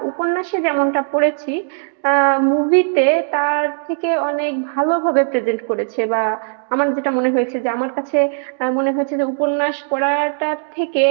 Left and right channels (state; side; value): silent; left; digital silence